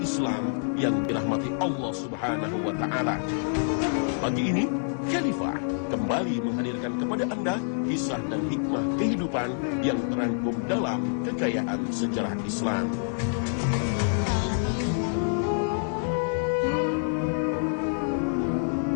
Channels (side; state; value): right; silent; digital silence